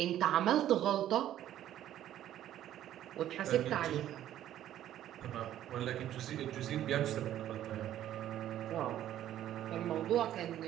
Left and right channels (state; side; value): quieter; left; 12.0 dB